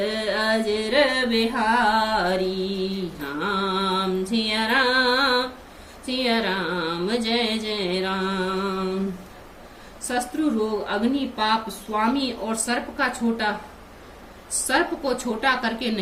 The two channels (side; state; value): both; identical; correlation 1.00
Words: अजर बिहारी। राम सिया राम, सिया राम जय जय राम। शत्रु रोग, अग्नि, पाप, स्वामी और सर्प को छोटा करके